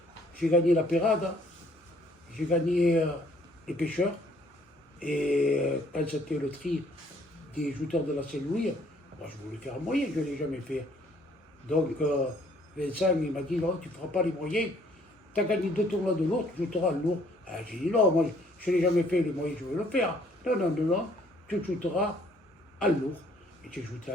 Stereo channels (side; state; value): both; normal; correlation 0.62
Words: J'ai gagné la Pérade, j'ai gagné les pêcheurs. Et quand c'était le tri des jouteurs de la Saint-Louis, moi, je voulais faire un moyen, je ne l'ai jamais fait. Donc Vincent il m'a dit non, tu ne feras pas les moyens. Tu as gagné 2 tournois de lourd, tu joueras le lourd. J'ai dit non, moi je ne l'ai jamais fait les moyens, je veux le faire. Non, non, non, non, tu joueras à lourd. Et j'ai joué à